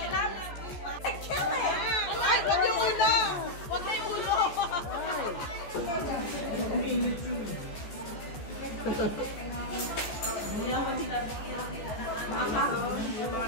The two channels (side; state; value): right; late; 14 ms